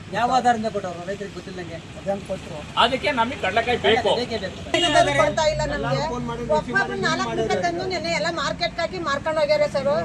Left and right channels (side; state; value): both; identical; correlation 1.00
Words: ಯಾವ ಆಧಾರದಿಂದ ಕೊಟ್ಟವ್ರು ರೈತರಿಗೆ ಗೊತ್ತಿಲ್ಲಂಗೆ ಕೊಟ್ಟರು. ಅದಕ್ಕೆ ನಮಗೆ ಕಡಲೆಕಾಯಿ ಬೇಕು. ಮಾರ್ಕೆಟ್ ಹಾಕಿ ಮಾರ್ಕೊಂಡು ಹೋಗ್ಯಾರ ಸರ್.